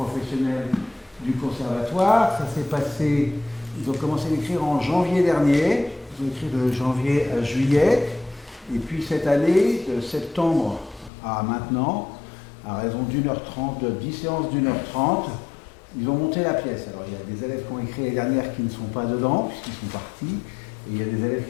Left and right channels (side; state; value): right; drops out; at 11.1 s